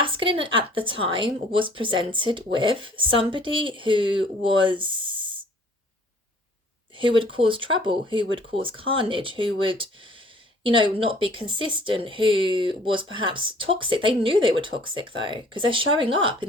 at the time was presented with somebody who would cause trouble, who would cause carnage, who would, you know, not be consistent, who was perhaps toxic. They knew they were toxic though, because they're showing up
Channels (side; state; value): both; normal; correlation 0.55